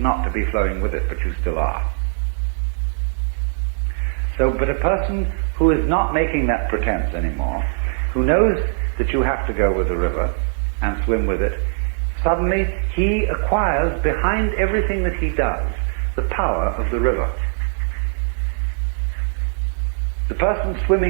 to be flowing with it, but you still are. So, but a person who is not making that pretense anymore, who knows that you have to go with the river and swim with it, suddenly he acquires behind everything that he does the power of the river. The person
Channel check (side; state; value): left; silent; 56 dB below the other